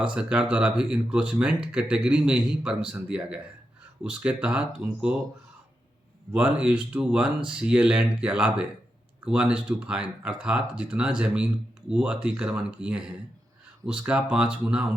सरकार द्वारा भी इंक्रोचमेंट कैटेगरी में ही परमिशन दिया गया है। उसके तहत उनको 1:1 CA लैंड के अलावे 1:5 अर्थात जितना ज़मीन वो अतिक्रमण किए हैं उसका 5 गुना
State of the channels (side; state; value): both; normal; correlation 0.87